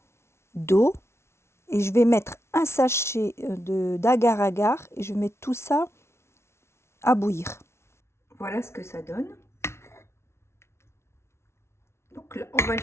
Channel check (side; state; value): right; late; 0.13 ms